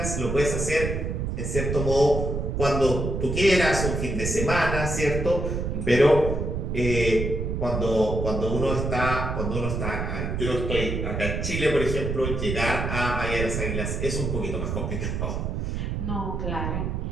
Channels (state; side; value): noise; right; rumble, 2 dB below the sound